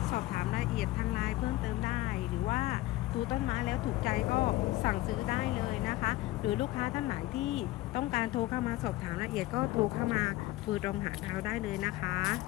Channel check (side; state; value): right; quieter; 17.5 dB